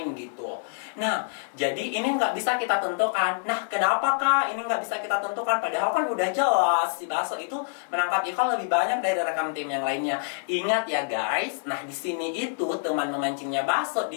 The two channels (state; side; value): silent; right; digital silence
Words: gitu. Nah, jadi ini nggak bisa kita tentukan. Nah, kenapa kak ini nggak bisa kita tentukan? Padahal kan udah jelas si Baso itu menangkap ikan lebih banyak dari rekan tim yang lainnya. Ingat ya guys, nah di sini itu teman memancingnya Baso